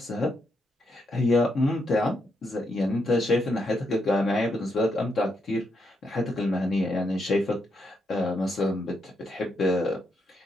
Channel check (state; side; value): normal; both; correlation 0.80